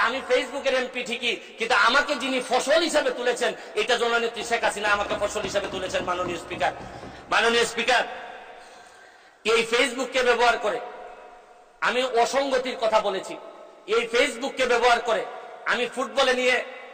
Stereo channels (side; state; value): both; identical; correlation 1.00